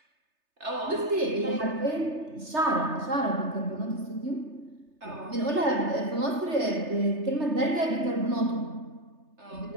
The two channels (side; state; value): left; late; 3.3 ms